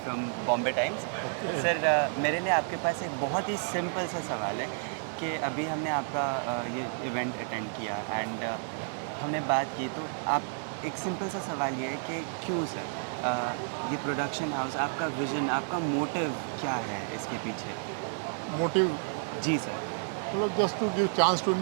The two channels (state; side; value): silent; left; digital silence